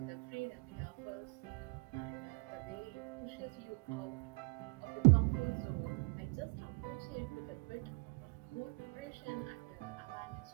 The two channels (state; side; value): quieter; left; 32.2 dB